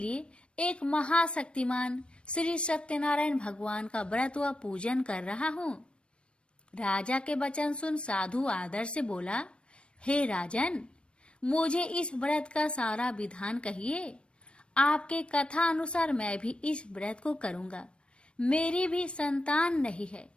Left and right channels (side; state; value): right; late; 0.057 ms